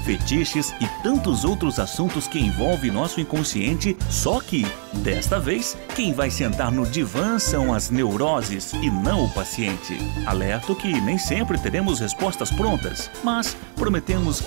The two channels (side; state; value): left; silent; 63 dB below the other